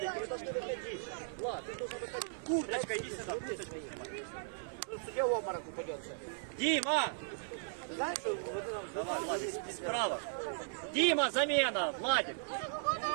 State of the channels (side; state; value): left; silent; 53 dB below the other